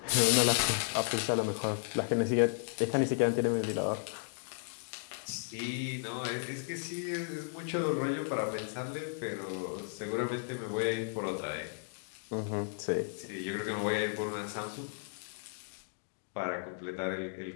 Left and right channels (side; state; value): right; silent; digital silence